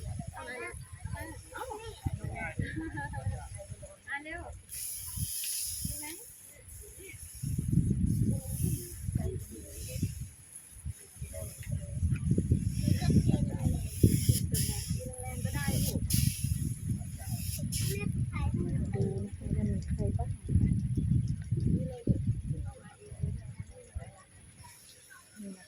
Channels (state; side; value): identical; both; correlation 1.00